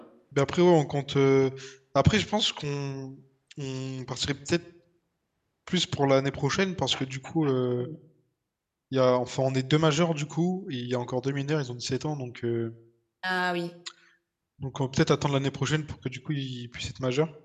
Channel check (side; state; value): both; identical; correlation 1.00